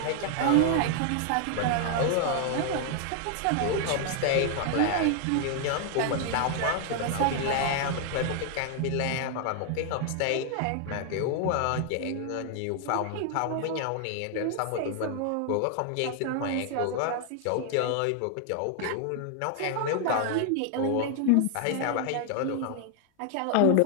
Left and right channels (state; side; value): different; both; correlation 0.00